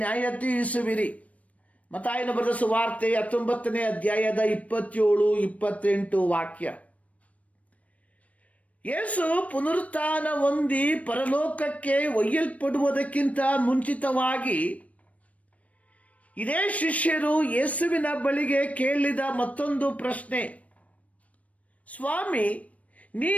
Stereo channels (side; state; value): right; late; 0.067 ms